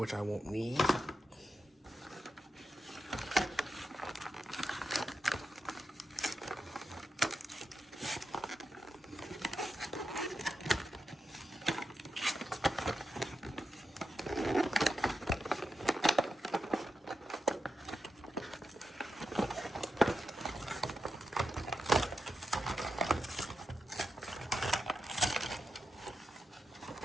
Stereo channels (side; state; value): both; normal; correlation 0.87